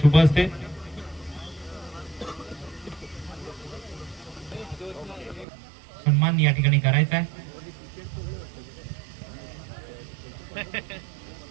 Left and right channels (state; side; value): drops out; left; at 5.5 s